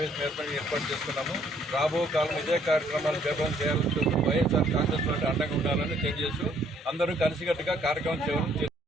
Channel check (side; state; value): both; normal; correlation 0.64